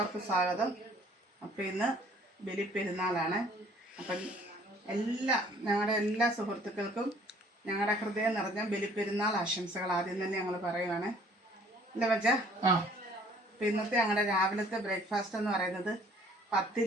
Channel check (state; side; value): normal; both; correlation 0.56